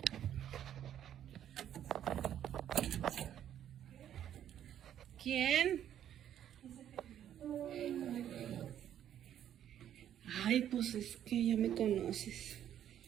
¿Quién? Ay, pues es que ya me conoces.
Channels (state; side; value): quieter; left; 10.5 dB